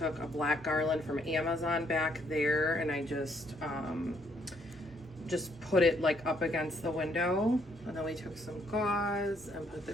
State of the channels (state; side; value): normal; both; correlation 0.69